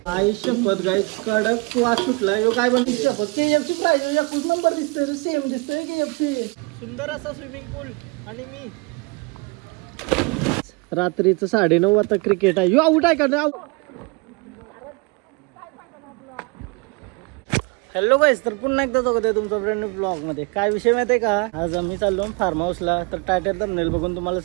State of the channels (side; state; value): left; quieter; 28.8 dB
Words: आई शपथ गाईस कडक वास सुटला. यो काय बनते शपथ. KFC प्राइस एकच नंबर दिसतोय, सेम दिसतोय KFC. सुंदर असा स्विमिंग पूल. आणि मी रात्रीचं 9:30 वाजता क्रिकेट आहे. यो आउट आहे का? हॅलो गाईस, तर पुन्हा एकदा स्वागत आहे तुमचं फ्रेंड ब्लॉग मध्ये. काय विषय माहिती आहे का? आज आम्ही चाललो फार्म हाऊसला. तर टायटल थंबनेल बघून तुम्हाला